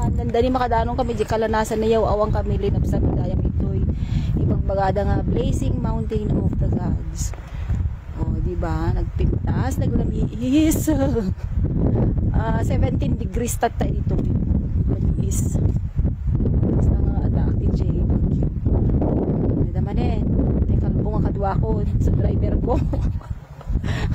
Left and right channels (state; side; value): identical; both; correlation 1.00